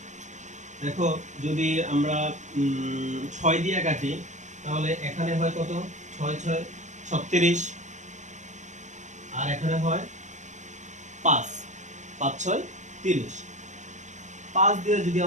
দেখো যদি আমরা 6 দিয়ে কাটি, তাহলে এখানে হয় কত, 6 6 36, আর এখানে হয় 5 5 6 30। 5 দিয়ে যদি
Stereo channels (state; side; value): late; left; 0.34 ms